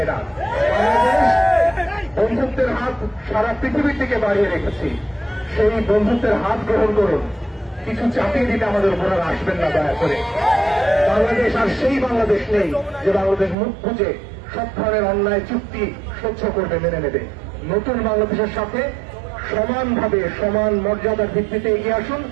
না। বাংলাদেশ বন্ধুত্বের হাত সারা পৃথিবীর দিকে বাড়িয়ে রেখেছি। সেই বন্ধুত্বের হাত গ্রহণ করুন। কিছু চাপিয়ে দিতে আমাদের উপর আর আসবেন না দয়া করে। বাংলাদেশ আর সেই বাংলাদেশ নেই যে বাংলাদেশ মুখ বুঝে সব ধরনের অন্যায় চুক্তি সহ্য করবে, মেনে নেবে। নতুন বাংলাদেশের সাথে সমানভাবে সমান মর্যাদার ভিত্তিতে এগিয়ে আসুন।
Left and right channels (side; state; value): left; drops out; at 13.6 s